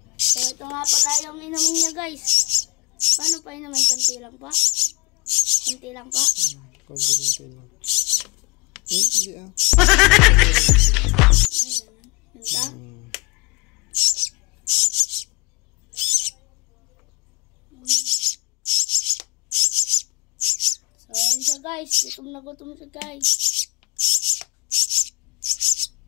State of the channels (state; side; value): quieter; right; 27.1 dB